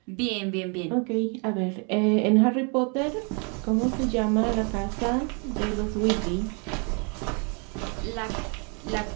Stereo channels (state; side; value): quieter; left; 36.2 dB